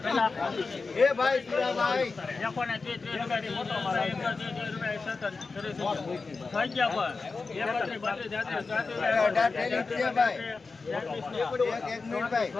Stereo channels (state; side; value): quieter; right; 4.2 dB